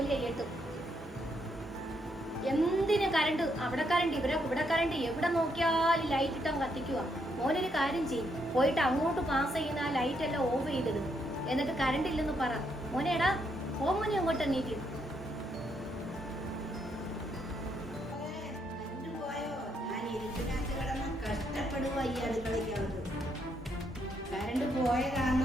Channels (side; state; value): both; normal; correlation 0.76